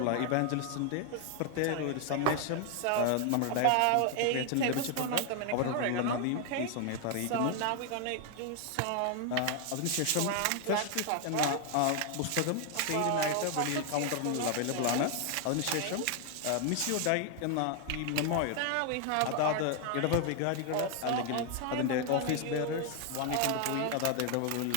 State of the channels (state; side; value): different; both; correlation 0.00